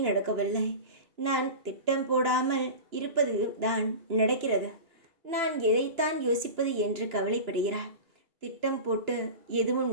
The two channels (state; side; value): late; left; 2.9 ms